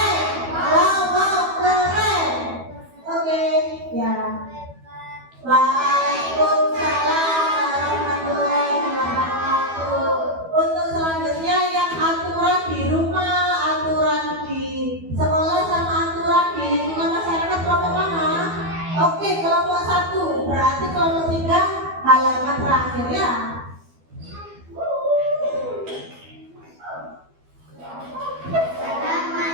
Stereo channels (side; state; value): left; late; 12 ms